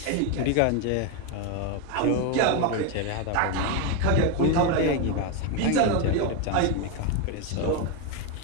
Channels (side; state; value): both; different; correlation 0.02